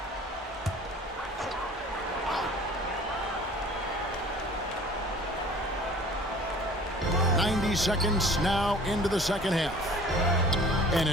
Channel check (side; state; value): both; normal; correlation 0.47